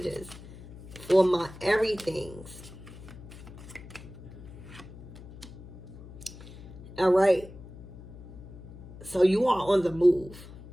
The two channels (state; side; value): noise; left; hum, 15 dB below the sound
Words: for my everythings. All right. So you are on the move.